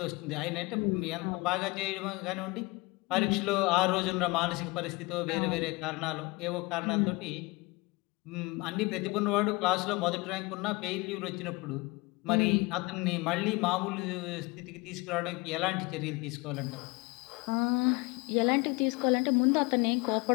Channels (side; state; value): right; quieter; 24.9 dB